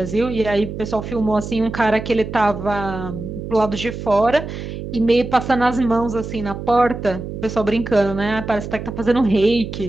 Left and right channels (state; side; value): noise; right; hum, 8 dB below the sound